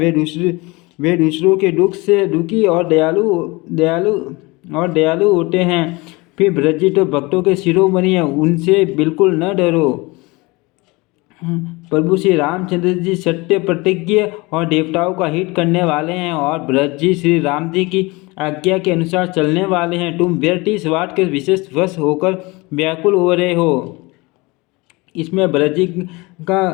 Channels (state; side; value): quieter; right; 24.4 dB